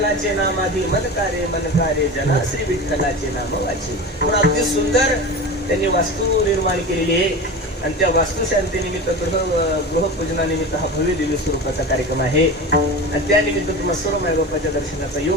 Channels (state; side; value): normal; both; correlation 0.29